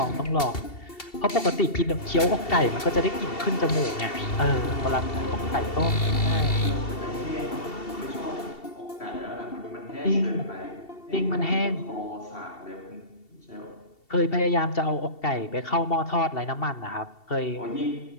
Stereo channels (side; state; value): right; late; 2.7 ms